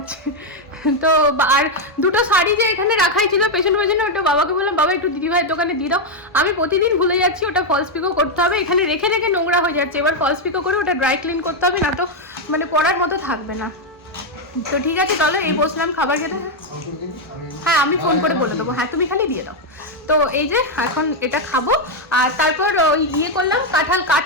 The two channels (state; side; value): normal; both; correlation 0.02